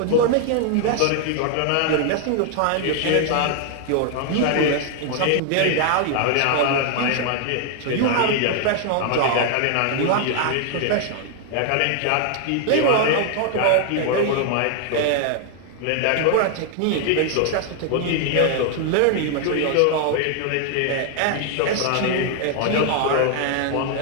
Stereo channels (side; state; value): both; different; correlation 0.00